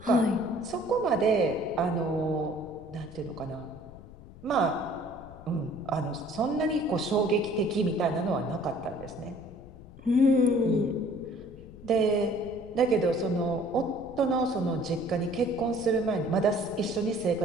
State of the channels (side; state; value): left; noise; rumble, 18 dB below the sound